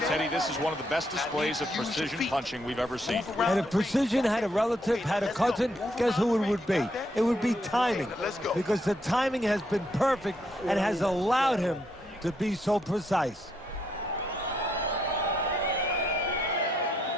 this is one of the best displays of precision punching we've ever seen. And if precision had a relative, had a cousin, guess who it would be? It would be timing. Because the timing has been perfect and has allowed him to be so precise.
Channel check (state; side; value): normal; both; correlation 0.75